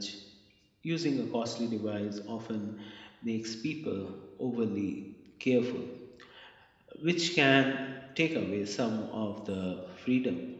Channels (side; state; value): both; identical; correlation 1.00